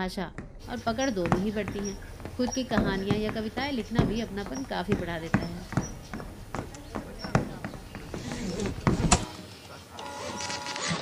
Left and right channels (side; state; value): both; identical; correlation 1.00